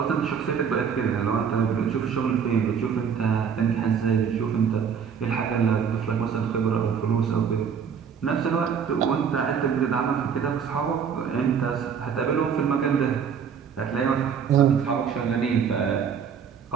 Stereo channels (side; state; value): left; quieter; 7.2 dB